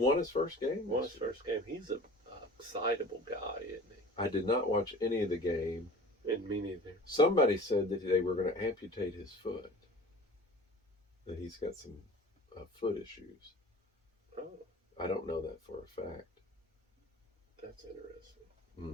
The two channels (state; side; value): normal; both; correlation 0.42